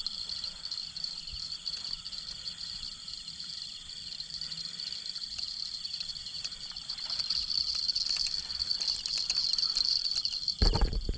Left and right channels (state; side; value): identical; both; correlation 1.00